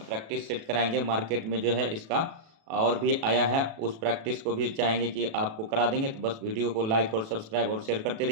सेट कराएंगे। मार्केट में जो है इसका और भी आया है, उस प्रैक्टिस को भी चाहेंगे कि आपको करा देंगे। तो बस वीडियो को लाइक और सब्सक्राइब और शेयर करते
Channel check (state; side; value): late; left; 36 ms